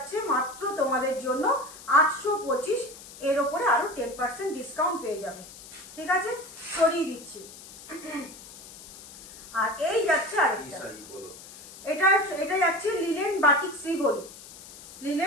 মাত্র তোমাদের জন্য 825, এর ওপরে আরো 10% ডিসকাউন্ট পেয়ে যাবে, ঠিক আছে, সরিয়ে দিচ্ছি। আর এই যাচ্ছে আরেকটা, এটা এটা যাচ্ছে লিলেন বাটিক শ্রীভরি,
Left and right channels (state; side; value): noise; left; hiss, 17 dB below the sound